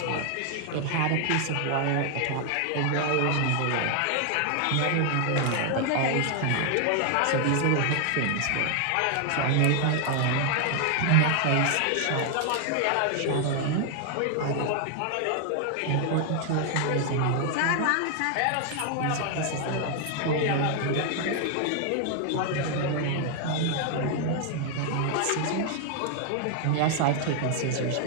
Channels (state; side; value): different; both; correlation 0.00